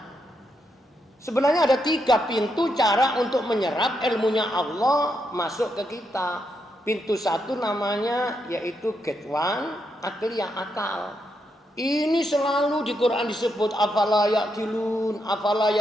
Sebenarnya ada 3 pintu cara untuk menyerap ilmunya Allah masuk ke kita. Pintu 1 namanya yaitu gate one, akliyah, akal. Ini selalu di Quran disebut afala yaqilun, afala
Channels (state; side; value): normal; both; correlation 0.81